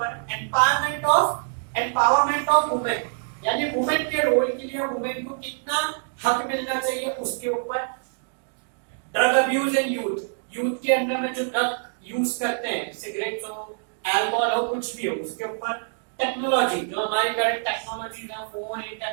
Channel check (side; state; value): left; silent; digital silence